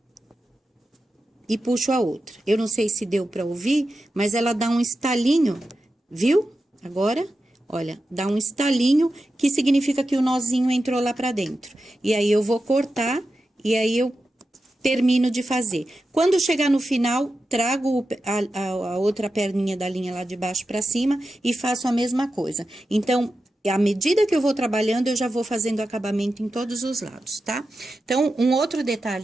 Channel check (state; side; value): normal; both; correlation 0.91